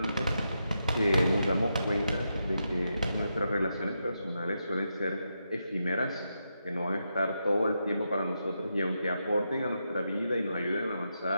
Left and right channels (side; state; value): both; inverted; correlation -0.85